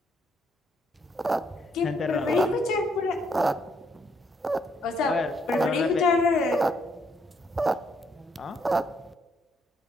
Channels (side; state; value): both; normal; correlation 0.72